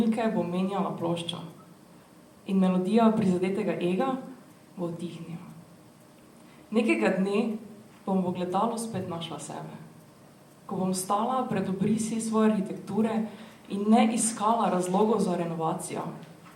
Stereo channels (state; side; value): identical; both; correlation 1.00